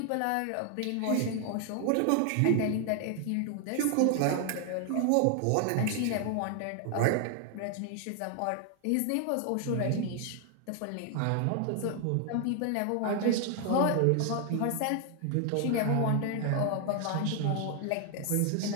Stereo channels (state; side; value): different; both; correlation 0.00